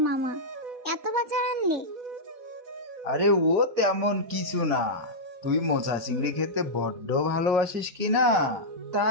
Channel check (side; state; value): left; late; 4.1 ms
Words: মামা? এত বাজার আনলে? আরে ও তেমন কিছু না। তুই মোচা চিংড়ি খেতে বড্ড ভালোবাসিস কি না,